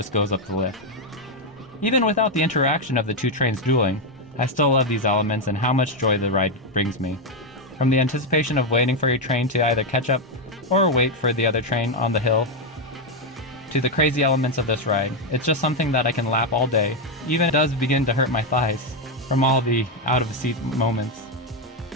goes up the lift. Even without the interaction of the 2 trains dueling, I still love these elements and how much joy the ride brings me. From the anticipation of waiting for your train to either catch up or wait for the other train on the hill, to the crazy elements of this ride, it's just something that I can lap all day. Even it does begin to hurt my thighs from all the out-of-seat moments.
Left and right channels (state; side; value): normal; both; correlation 0.04